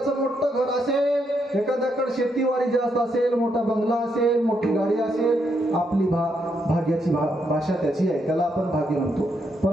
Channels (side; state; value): both; normal; correlation 0.78